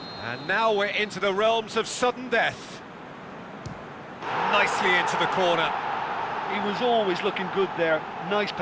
And now we're into the realms of sudden death. Nicely into the corner. He was always looking good there. Nice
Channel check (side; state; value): both; identical; correlation 1.00